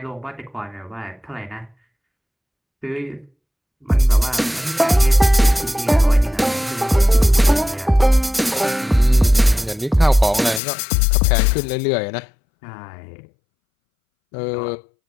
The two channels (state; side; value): drops out; right; at 10.6 s